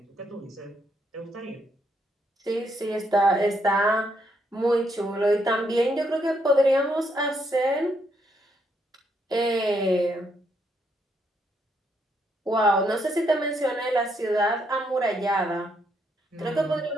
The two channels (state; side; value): normal; both; correlation 0.75